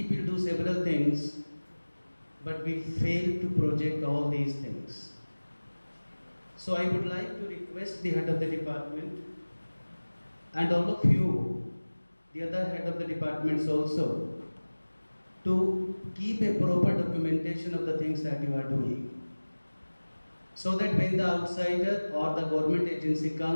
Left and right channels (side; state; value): both; inverted; correlation -1.00